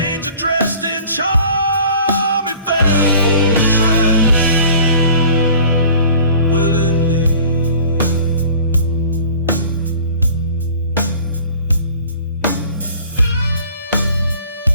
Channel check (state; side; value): inverted; both; correlation -0.47